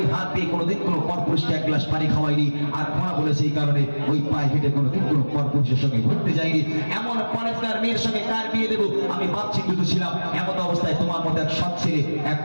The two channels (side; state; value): both; inverted; correlation -1.00